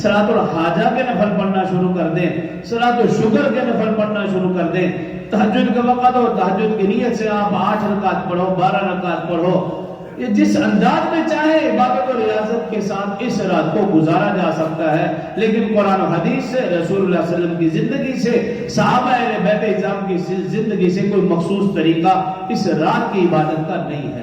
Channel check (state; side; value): identical; both; correlation 1.00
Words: الحاجہ کے نفل پڑھنا شروع کر دیں، صلاۃ الشکر کے نفل پڑھنا شروع کر دیں، تہجد کا وقت ہو تہجد کی نیت سے آپ 8 رکعت پڑھو، 12 رکعت پڑھو، یہ جس انداز میں چاہے عبادت اور ریاضت کے ساتھ اس رات کو گزارا جا سکتا ہے، لیکن قرآن و حدیث سے، رسول اللہ صلی اللہ علیہ وسلم کی زندگی سے، صحابہ اہل بیت اعظام کی زندگی سے کوئی مخصوص طریقہ اس رات کی عبادت کا نہیں